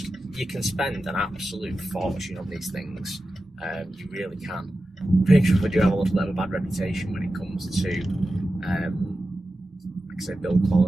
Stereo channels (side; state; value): both; normal; correlation 0.93